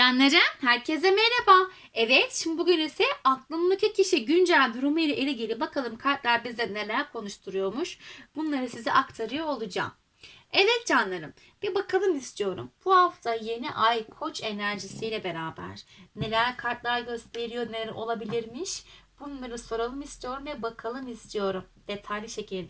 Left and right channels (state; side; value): identical; both; correlation 1.00